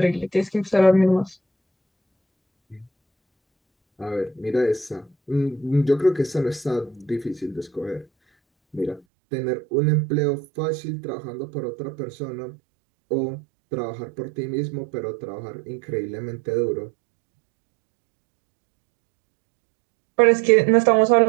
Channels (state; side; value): drops out; left; at 9.0 s